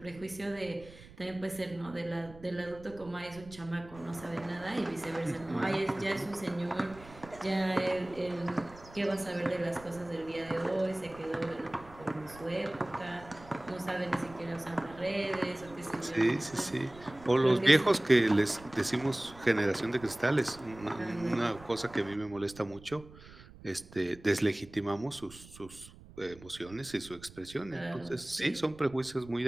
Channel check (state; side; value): noise; right; rumble, 20 dB below the sound